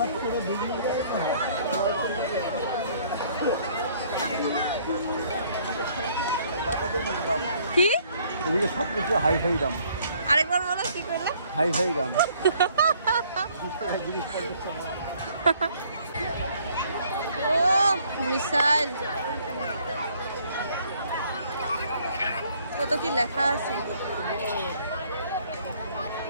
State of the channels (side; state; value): both; inverted; correlation -0.61